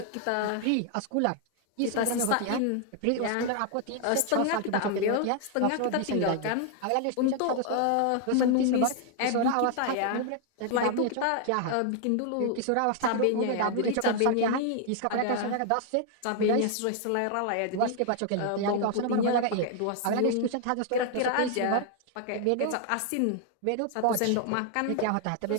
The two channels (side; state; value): both; different; correlation 0.00